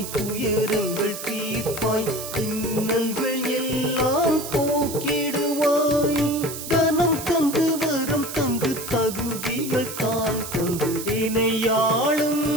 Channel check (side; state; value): right; noise; hiss, 9 dB below the sound